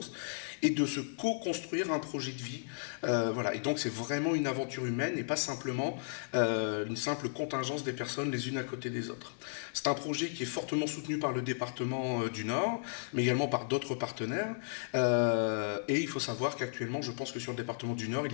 et de se co-construire un projet de vie. Et donc c'est vraiment une aventure humaine et pas simplement une simple contingence des personnes les unes à côté des autres. C'est un projet qui est fortement soutenu par le département du Nord, mais également par d'autres partenaires. Et il faut savoir qu'actuellement, je pense que sur le département du Nord, il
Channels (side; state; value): right; silent; 55 dB below the other